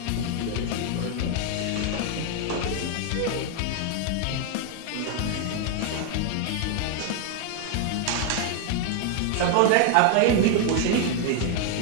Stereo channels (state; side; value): different; both; correlation 0.00